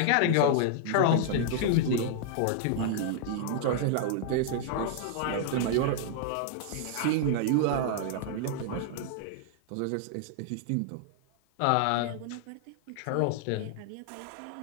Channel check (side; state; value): both; different; correlation -0.01